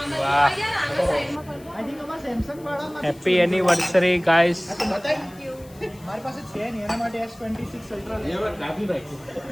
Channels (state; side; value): noise; left; hiss, 25 dB below the sound